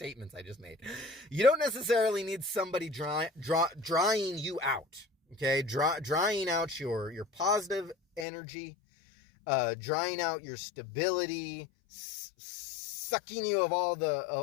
I just made. You don't necessarily need somebody drying you out, okay? Drying out your positive energy, drying out your stability, sucking you of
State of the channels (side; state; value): right; drops out; at 8.2 s